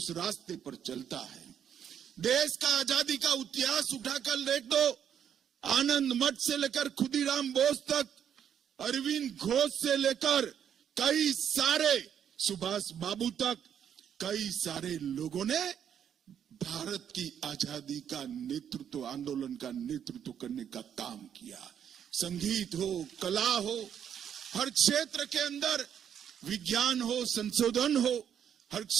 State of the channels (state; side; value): quieter; left; 8.8 dB